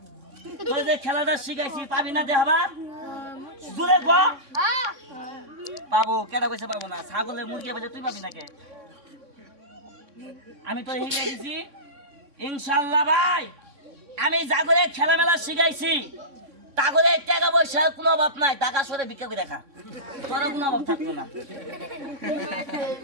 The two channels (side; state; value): left; late; 3.6 ms